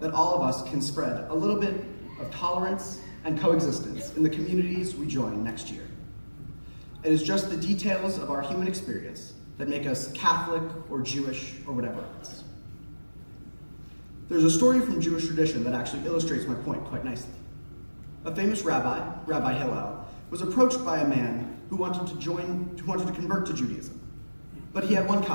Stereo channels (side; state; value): both; inverted; correlation -1.00